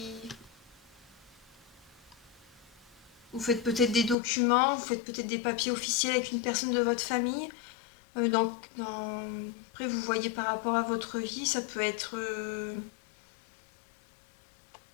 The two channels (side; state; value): right; drops out; at 4.2 s